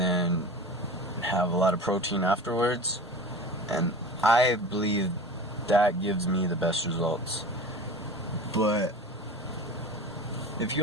have a lot of protein afterwards, and I believe that gives me the best results. But if you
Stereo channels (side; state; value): both; normal; correlation 0.35